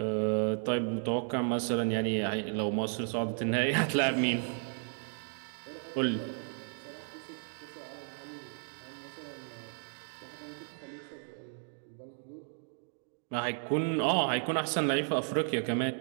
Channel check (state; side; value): silent; left; 55 dB below the other